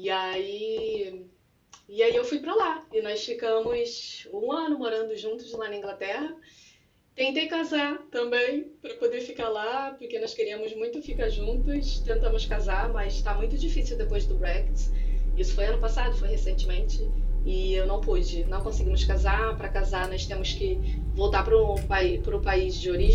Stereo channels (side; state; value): both; identical; correlation 1.00